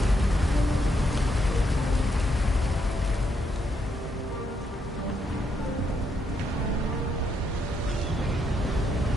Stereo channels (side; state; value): both; normal; correlation 0.77